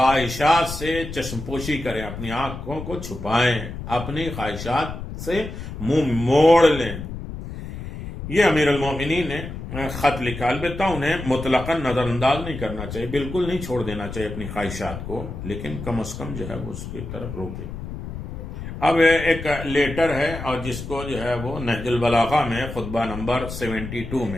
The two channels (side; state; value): left; noise; rumble, 9 dB below the sound